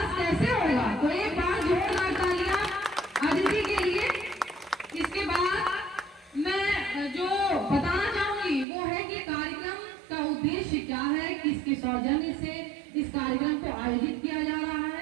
कैसे होगा। तो एक बार जोरदार तालियां अतिथि के लिए। इसके बाद मैं जो बताना चाहूंगी वो है कि कार्यक्रम का उद्देश्य क्या है, किसके सौजन्य से इस कार्यक्रम को आयोजित किया जा रहा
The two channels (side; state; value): left; drops out; at 8.7 s